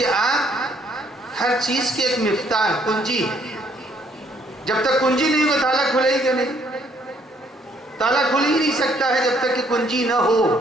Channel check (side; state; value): both; normal; correlation 0.66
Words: آپ ہر چیز کے ایک مفتاح، کنجی ہے۔ جب تک کنجی نہیں ہو تالا کھلے گا نہیں، تالا کھل ہی نہیں سکتا ہے جب تک کہ کنجی نہ ہو،